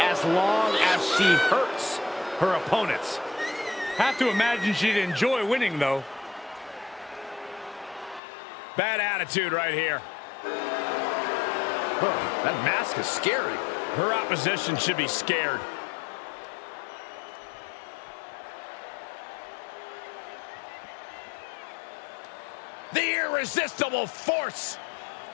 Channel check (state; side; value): drops out; right; at 8.2 s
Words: as long as she hurts her opponents. Have to imagine she'd enjoy winning, though. Bad attitude right here. Oh, that mask is scary. Her opposition should be scared. The irresistible force.